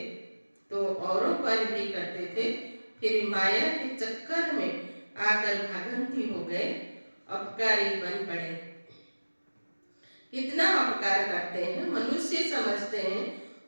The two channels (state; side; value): inverted; both; correlation -1.00